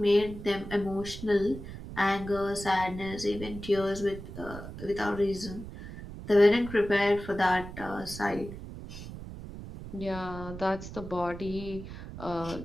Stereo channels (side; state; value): right; noise; rumble, 11 dB below the sound